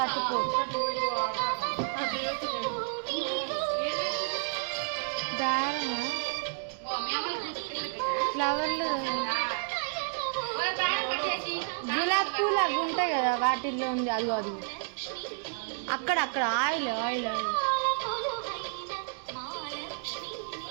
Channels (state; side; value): silent; left; digital silence